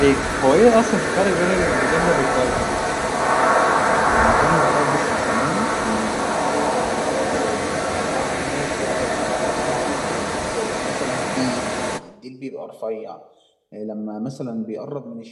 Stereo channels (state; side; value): identical; both; correlation 1.00